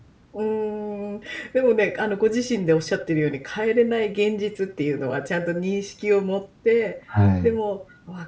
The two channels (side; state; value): both; identical; correlation 1.00